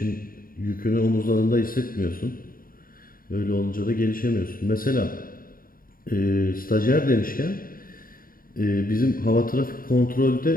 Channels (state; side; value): late; right; 0.41 ms